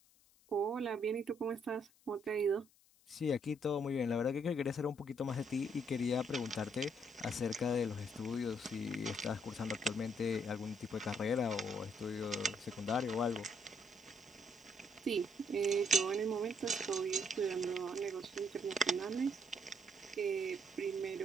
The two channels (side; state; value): left; noise; hiss, 30 dB below the sound